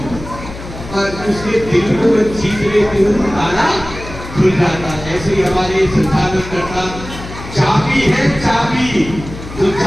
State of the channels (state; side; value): noise; left; hum, 12 dB below the sound